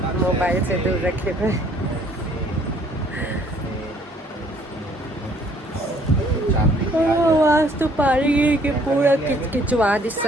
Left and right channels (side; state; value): both; normal; correlation 0.61